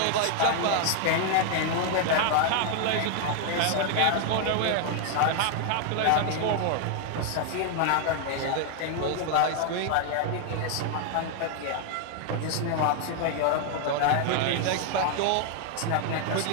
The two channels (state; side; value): different; both; correlation 0.00